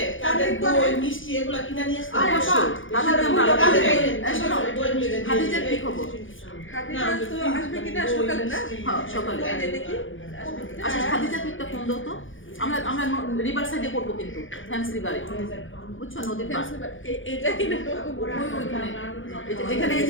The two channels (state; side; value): late; right; 0.57 ms